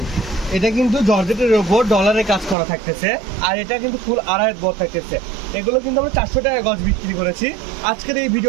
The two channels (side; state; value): left; drops out; at 2.6 s